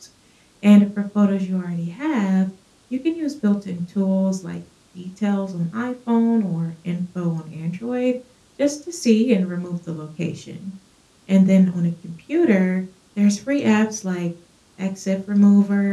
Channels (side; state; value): both; identical; correlation 1.00